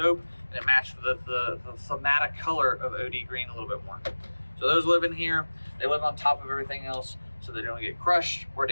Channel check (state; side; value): inverted; both; correlation -1.00